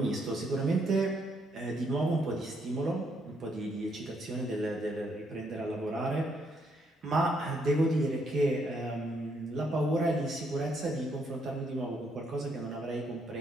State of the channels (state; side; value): normal; both; correlation 0.73